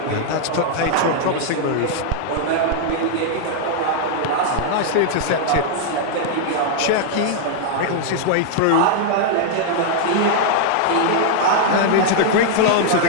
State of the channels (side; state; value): both; different; correlation -0.01